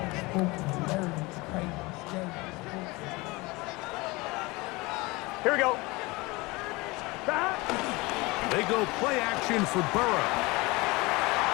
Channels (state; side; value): quieter; right; 23.5 dB